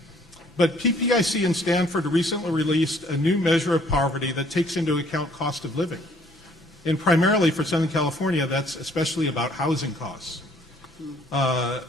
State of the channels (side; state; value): both; normal; correlation 0.61